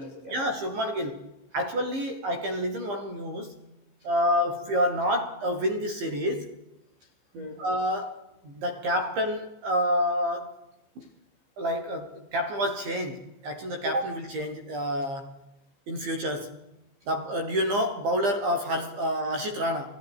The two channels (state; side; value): late; left; 15 ms